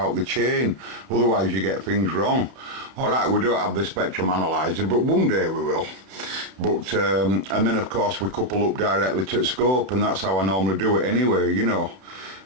the chain, otherwise you get things wrong. Alright, we don't have the spectrum analyzer, but one day we will. But and then of course we couple up directly to the scope, and that's how I normally do it anyway, you know.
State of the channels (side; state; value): left; late; 32 ms